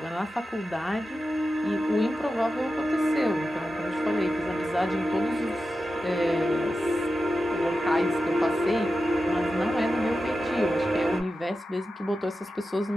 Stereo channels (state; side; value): normal; both; correlation 0.92